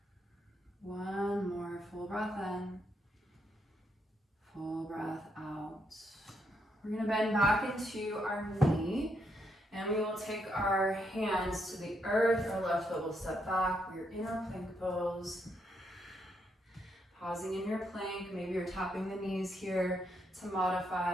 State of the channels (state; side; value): normal; both; correlation 0.78